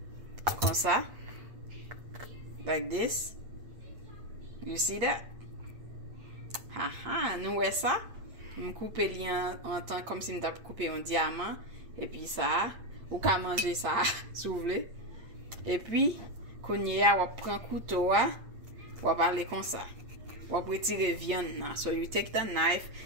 Comme ça. Like this. You see that? Haha, nous voyons ça. Je coupe en temps comme si je coupé un diamant. Et puis ça. Ou qu'à manger ça, si vous voulez. Et puis, quand on prend couteau, on va aller comme ça. On va retirer viande. So you take the knife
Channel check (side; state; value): left; late; 8.6 ms